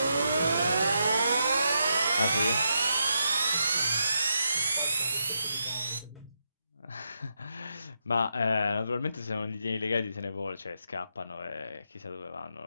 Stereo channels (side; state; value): both; inverted; correlation -0.82